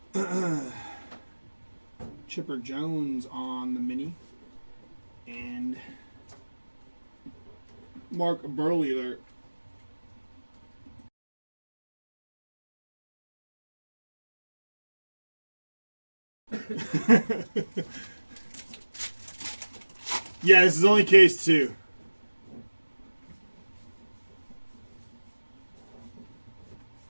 Chipper Jones on the mini. And Mark Burley there. Yeah, this is only case 2.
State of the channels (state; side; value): inverted; both; correlation -1.00